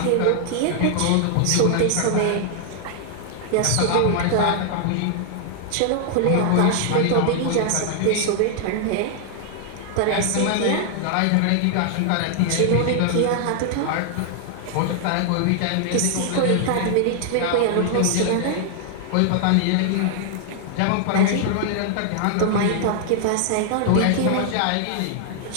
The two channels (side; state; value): both; different; correlation 0.00